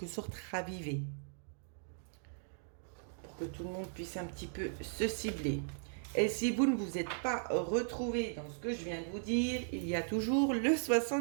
sorte ravivée. Pour que tout le monde puisse un petit peu se cibler. Et si vous ne vous êtes pas retrouvé dans ce que je viens de vous dire, il y a toujours le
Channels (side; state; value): left; silent; digital silence